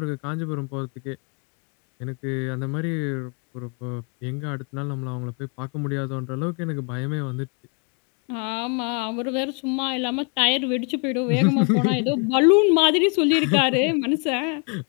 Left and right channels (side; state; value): right; quieter; 34.7 dB